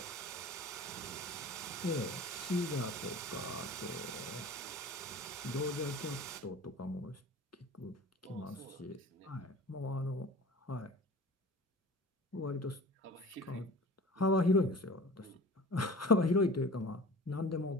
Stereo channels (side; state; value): both; normal; correlation 0.41